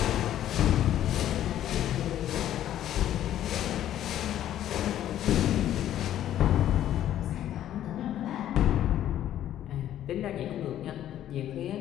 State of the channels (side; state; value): right; quieter; 11.8 dB